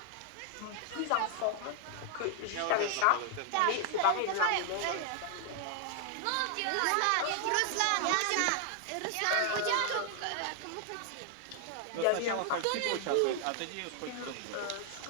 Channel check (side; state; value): both; different; correlation 0.00